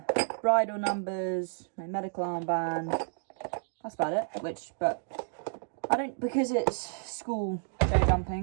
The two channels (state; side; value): silent; left; digital silence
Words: numbers, my medical armband. That's about it. But I don't, because it's school show